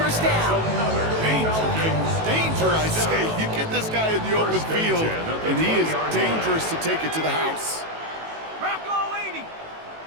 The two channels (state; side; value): late; left; 18 ms